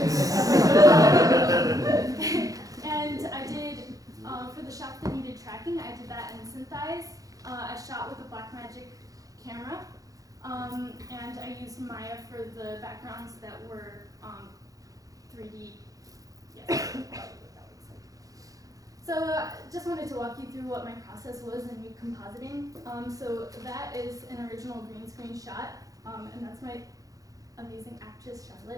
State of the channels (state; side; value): late; left; 0.17 ms